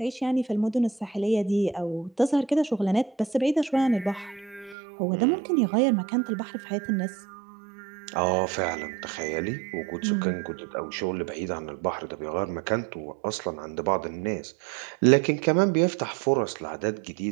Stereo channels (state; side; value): drops out; left; at 4.8 s